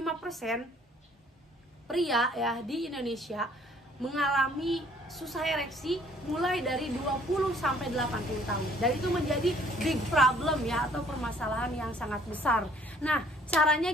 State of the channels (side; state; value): both; normal; correlation 0.59